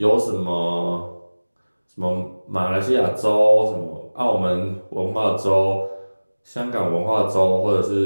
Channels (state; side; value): inverted; both; correlation -1.00